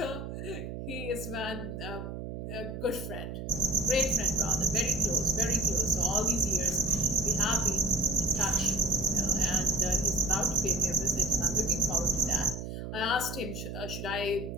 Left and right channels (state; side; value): noise; right; hum, 7 dB below the sound